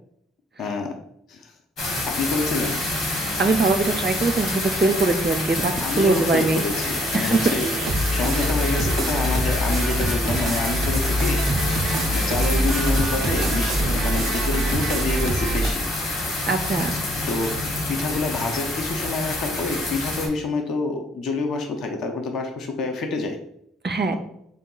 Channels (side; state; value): both; normal; correlation 0.66